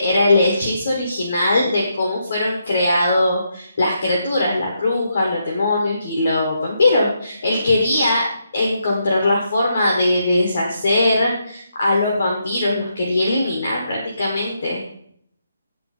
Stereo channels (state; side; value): inverted; both; correlation -0.80